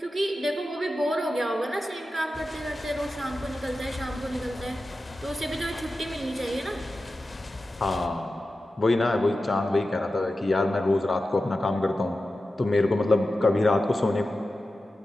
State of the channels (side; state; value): both; normal; correlation 0.93